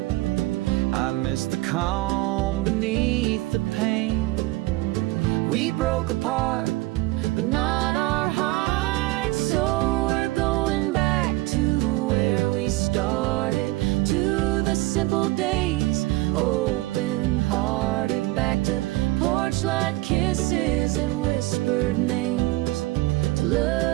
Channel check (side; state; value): left; quieter; 19.7 dB